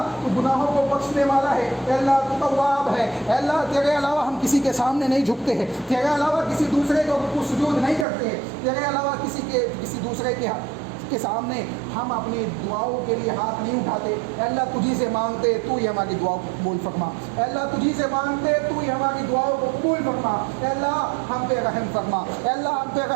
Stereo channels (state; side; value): drops out; left; at 8.1 s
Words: گناہوں کو بخشنے والا ہے, اے اللہ تو تواب ہے, اے اللہ تیرے علاوہ ہم کسی کے سامنے نہیں جھکتے ہیں, تیرے علاوہ کسی دوسرے کو سجود نہیں کرتے ہیں, تیرے علاوہ کسی دوسرے کے سامنے ہم اپنی دعاؤں کے لیے ہاتھ نہیں اٹھاتے. اے اللہ تجھی سے مانگتے, تو ہی ہماری دعاؤں کو قبول فرما. اے اللہ تجھی سے مانگتے, تو ہی ہماری دعاؤں کو قبول فرما. اے اللہ ہم پہ رحم فرما, اے اللہ ہم پہ